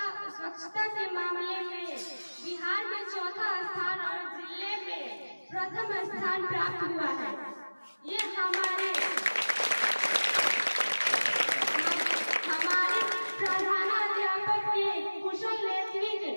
के मामले में बिहार में चौथा स्थान और जिले में प्रथम स्थान प्राप्त हुआ है। ये हमारे प्रधानाध्यापक के कुशल नेतृत्व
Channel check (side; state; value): both; inverted; correlation -1.00